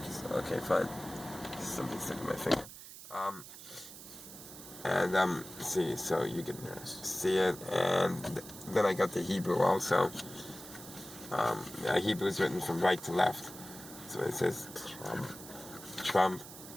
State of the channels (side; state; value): right; noise; hiss, 14 dB below the sound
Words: fine. Just something stuck in my finger. See, so you can see it, and then I got the Hebrew also. Hebrew is written from right to left, so it says Trump,